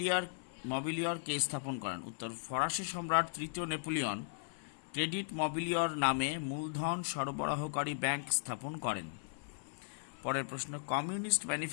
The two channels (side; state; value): right; silent; 53 dB below the other